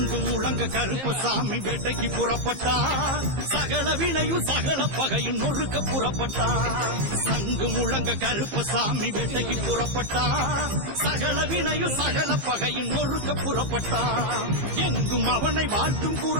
முழங்க கருப்பசாமி வேட்டைக்கு புறப்பட்டான் சகல வினையும் சகல பகையும் நொறுக்க புறப்பட்டான் சங்கு முழங்க கருப்பசாமி வேட்டைக்கு புறப்பட்டான் சகல வினையும் சகல பகையும் நொறுக்க புறப்பட்டான் எங்கும் அவனை வாழ்த்தும்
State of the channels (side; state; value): left; late; 15 ms